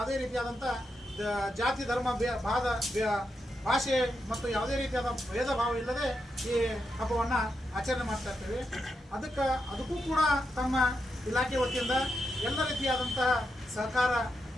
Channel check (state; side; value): normal; both; correlation 0.85